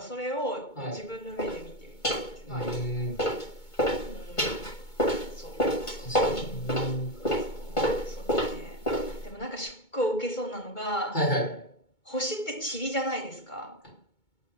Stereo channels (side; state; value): right; late; 2.2 ms